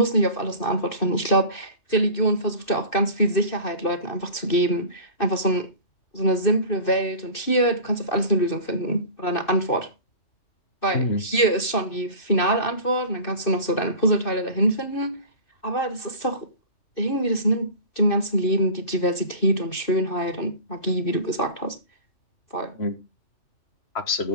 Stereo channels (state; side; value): late; right; 2.6 ms